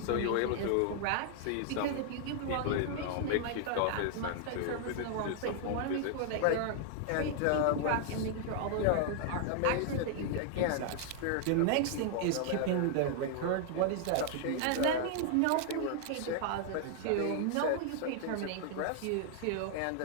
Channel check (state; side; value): different; both; correlation 0.00